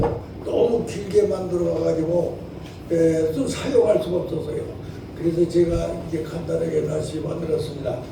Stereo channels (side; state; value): both; identical; correlation 1.00